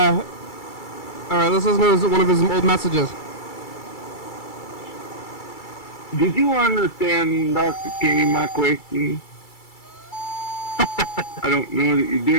right, let's listen to one of his old messages. Did you understand, Dr. Kenny, my question? I don't know that you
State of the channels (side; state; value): right; late; 2.3 ms